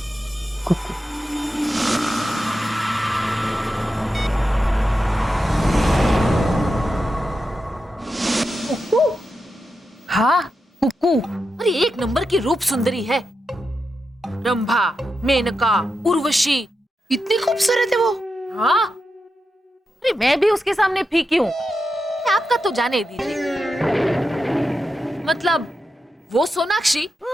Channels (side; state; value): both; normal; correlation 0.88